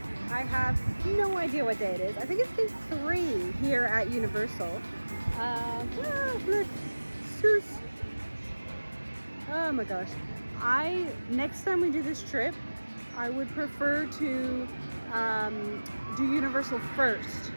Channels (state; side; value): inverted; both; correlation -1.00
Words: I have no idea what day it is. I think it's day 3 here at Universal. Look, Seuss. Oh my gosh. Next time we do this trip, I would prefer to do Universal first,